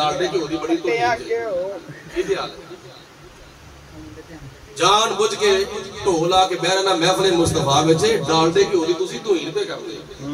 گھیو دی بڑی توہین ہے یہ حال ہے جان بوجھ کے ڈھول آ کے بہ رہنا محفل مصطفیٰ وچ ڈالڈے گھیو دی تسی توہین پہ کرتے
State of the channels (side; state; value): both; identical; correlation 1.00